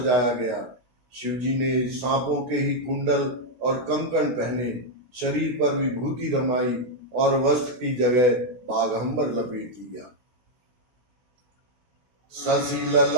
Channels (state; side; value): late; left; 16 ms